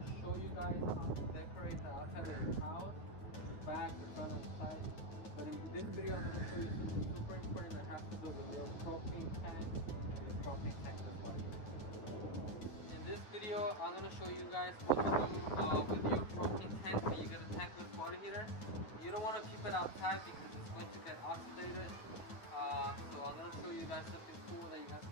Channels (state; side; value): late; right; 9.4 ms